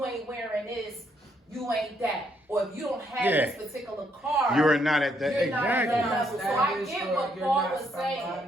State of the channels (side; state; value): both; normal; correlation 0.73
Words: ain't wearing this, you ain't that. Or if you don't have Yeah. this particular car, You're not at that. You're not at that Exactly. level. So I get what Paul was